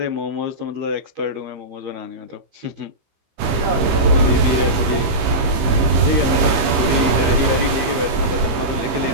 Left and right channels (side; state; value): left; late; 15 ms